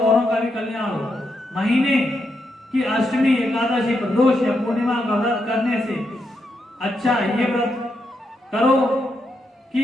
औरों का भी कल्याण हो। महीने की अष्टमी, एकादशी, प्रदोष या पूर्णिमा का व्रत करने से अच्छा ये व्रत करो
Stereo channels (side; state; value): both; normal; correlation 0.82